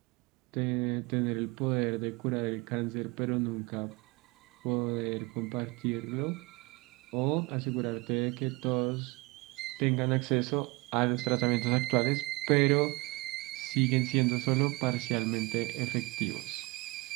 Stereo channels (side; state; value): left; quieter; 24.5 dB